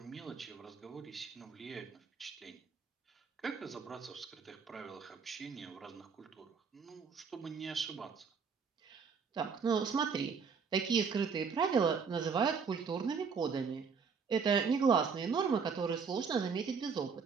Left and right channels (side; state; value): left; quieter; 5.8 dB